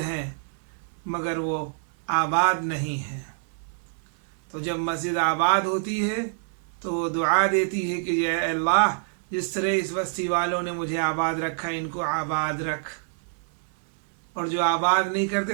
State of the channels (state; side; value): silent; left; 61 dB below the other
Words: ہیں مگر وہ آباد نہیں ہیں، تو جب مسجد آباد ہوتی ہے تو وہ دعا دیتی ہے کہ اے اللہ، جس طرح اس بستی والوں نے مجھے آباد رکھا ان کو آباد رکھ، اور جو آباد نہیں